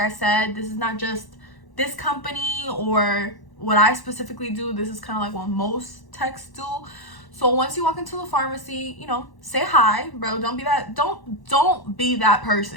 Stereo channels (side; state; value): right; late; 1.1 ms